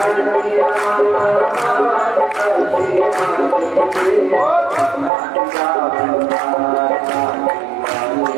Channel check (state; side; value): drops out; left; at 5.1 s